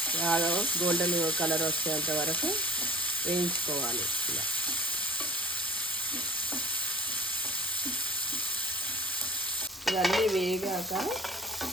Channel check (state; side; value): normal; both; correlation 0.41